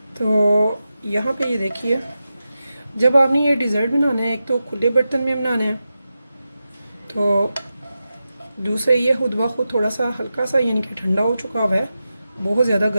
तो यहाँ पे ये देखिए, जब आपने ये डिज़र्ट बनाना है, एक तो खुले बर्तन में बनाना है, तो दूसरे ये खुद ब खुद थोड़ा सा हल्का सा यानी कि ठंडा हो चुका हुआ है, बहुत ज़्यादा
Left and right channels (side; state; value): both; inverted; correlation -0.91